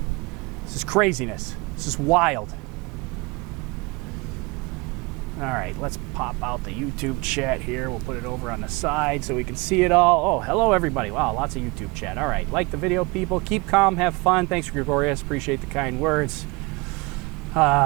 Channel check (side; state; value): left; quieter; 26.3 dB